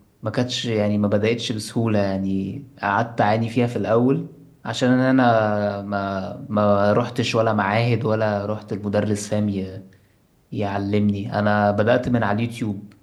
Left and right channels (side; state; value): both; identical; correlation 1.00